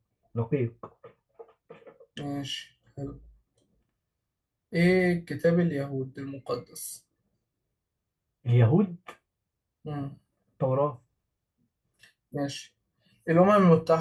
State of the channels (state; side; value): identical; both; correlation 1.00